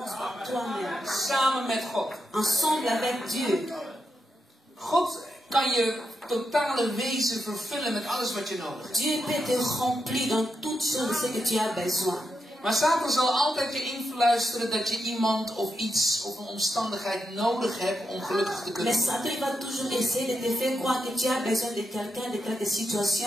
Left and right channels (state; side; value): normal; both; correlation 0.84